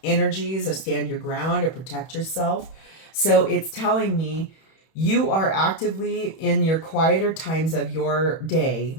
energies, or stand your ground, or protect yourself. So it's telling me you are actively in your quieter times of your day,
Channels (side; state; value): right; late; 31 ms